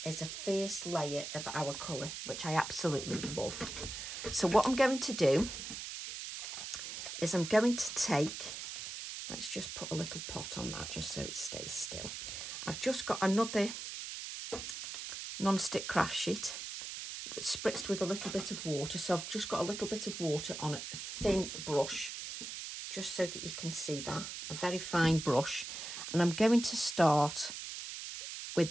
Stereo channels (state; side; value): noise; right; hiss, 7 dB below the sound